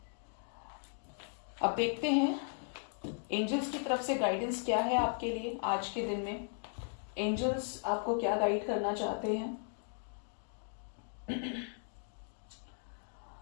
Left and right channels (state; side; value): silent; right; 53 dB below the other